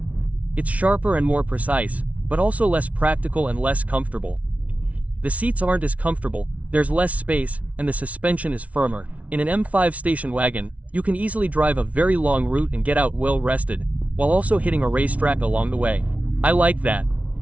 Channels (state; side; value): late; left; 0.067 ms